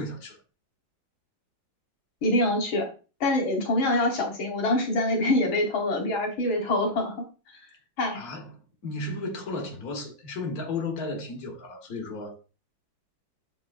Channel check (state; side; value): normal; both; correlation -0.12